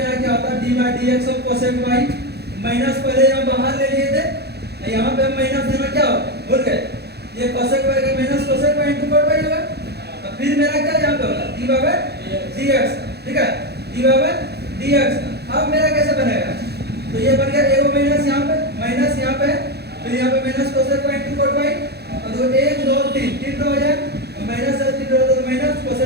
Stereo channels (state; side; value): late; left; 0.48 ms